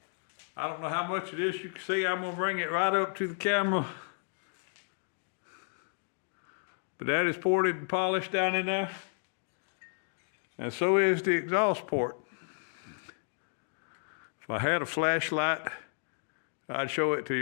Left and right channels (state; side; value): silent; right; 56 dB below the other